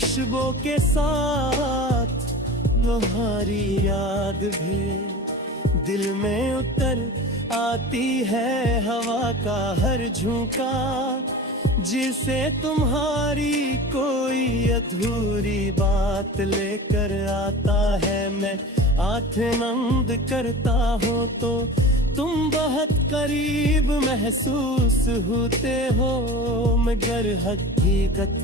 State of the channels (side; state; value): both; normal; correlation 0.35